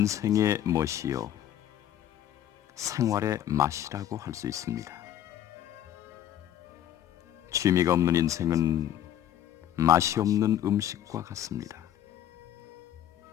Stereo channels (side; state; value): right; quieter; 11.2 dB